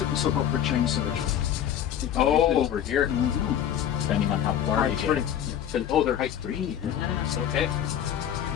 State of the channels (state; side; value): quieter; right; 10.1 dB